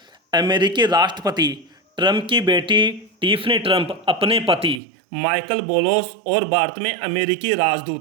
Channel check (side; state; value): left; drops out; at 4.8 s